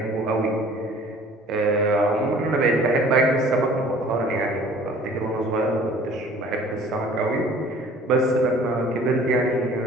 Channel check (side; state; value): both; normal; correlation 0.50